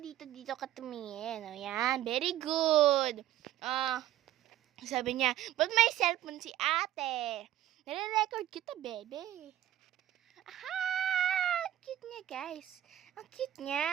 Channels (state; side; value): quieter; left; 12.8 dB